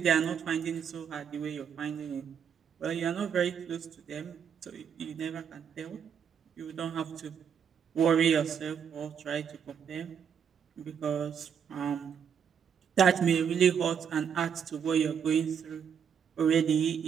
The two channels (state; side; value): quieter; left; 7.6 dB